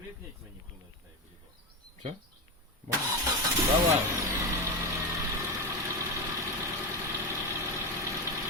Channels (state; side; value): normal; both; correlation 0.15